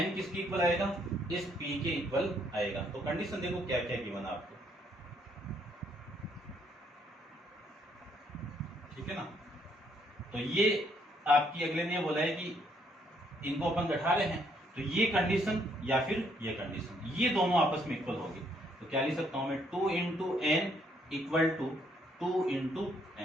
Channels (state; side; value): normal; both; correlation 0.69